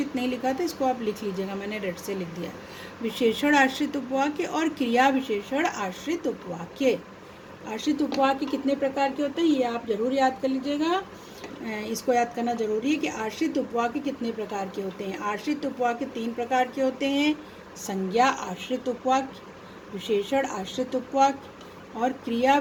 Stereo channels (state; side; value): identical; both; correlation 1.00